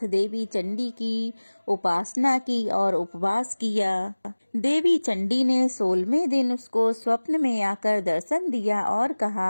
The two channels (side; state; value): both; inverted; correlation -1.00